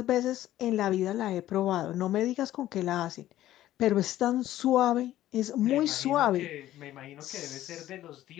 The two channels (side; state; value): right; quieter; 13.8 dB